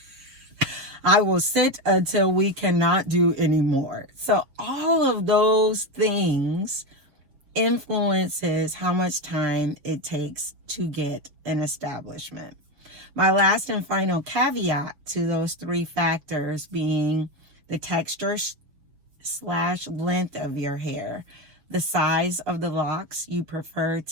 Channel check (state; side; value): late; left; 6.8 ms